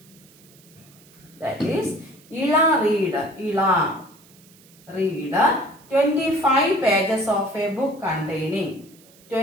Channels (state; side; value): noise; right; hiss, 26 dB below the sound